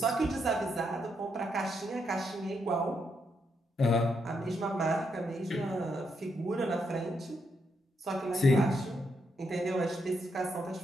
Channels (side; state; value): both; normal; correlation 0.79